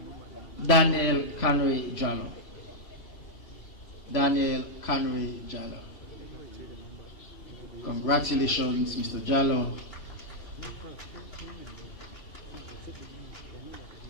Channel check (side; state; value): right; late; 3.1 ms